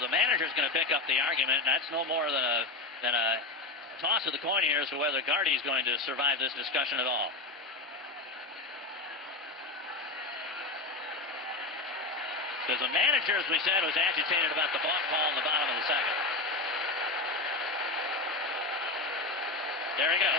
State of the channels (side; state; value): right; quieter; 3.4 dB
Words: manager's going to pick up the argument. That's no more than a toss of the coin here as to whether Gardy's going to survive this discussion at all. Because the manager, as we said, was agitated about the balk call in the bottom of the second. There he goes.